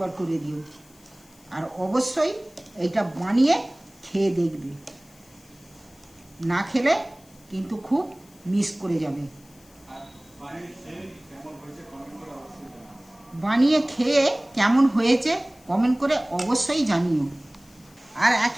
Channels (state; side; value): noise; left; hiss, 27 dB below the sound